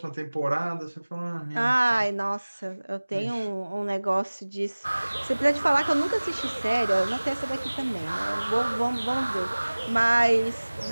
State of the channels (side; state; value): both; inverted; correlation -1.00